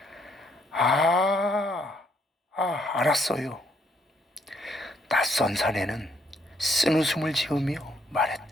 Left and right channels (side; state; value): both; normal; correlation 0.70